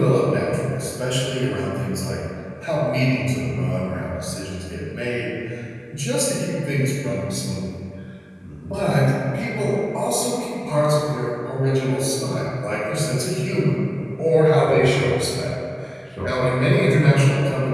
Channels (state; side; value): identical; both; correlation 1.00